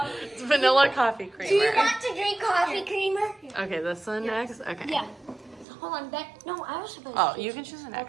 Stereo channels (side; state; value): left; drops out; at 5.7 s